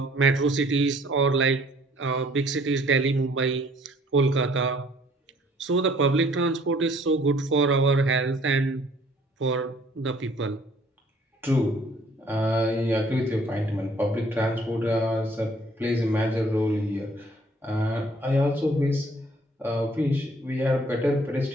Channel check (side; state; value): both; normal; correlation 0.59